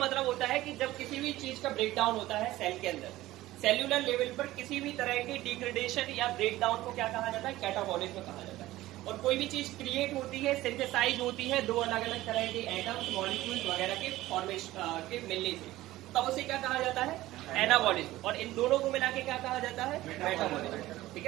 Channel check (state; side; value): quieter; left; 16.5 dB